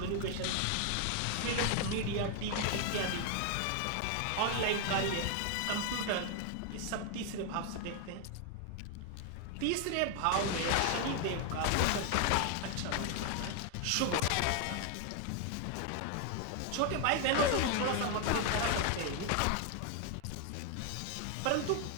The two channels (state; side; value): different; both; correlation 0.00